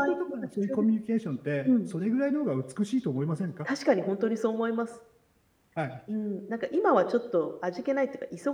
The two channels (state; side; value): identical; both; correlation 1.00